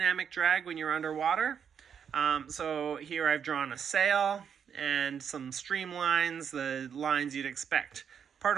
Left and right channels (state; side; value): quieter; left; 7.6 dB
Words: drag when you're underwater. So here I've drawn a sail and some streamlines, the lines you'd expect